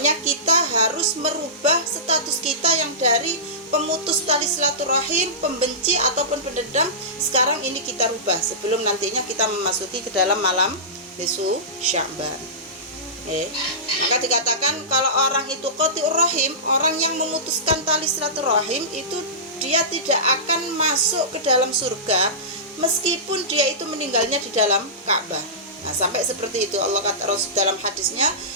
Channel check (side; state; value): both; normal; correlation -0.20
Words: kita harus merubah status kita yang dari pemutus tali silaturahim, pembenci ataupun pendendam, sekarang ini kita rubah sebelum nantinya kita memasuki ke dalam malam nisfu Sya'ban. Maka dikatakan kalau orang itu qati'ur rahim, orang yang memutuskan tali silaturahim itu dia tidak akan masuk ke dalam surga meskipun dia itu meninggalnya di dalam Ka'bah. Nah, sampai seperti itu Allah kata Rasul dalam hadisnya,